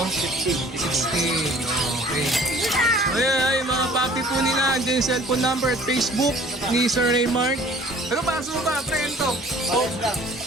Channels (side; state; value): both; normal; correlation 0.51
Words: 15. 16. Okay. Ay, mga papi po nila. Andiyan yung cellphone number at Facebook ni Sir Raymart. Ano pa? Sumo ba? Prento. Pares lang.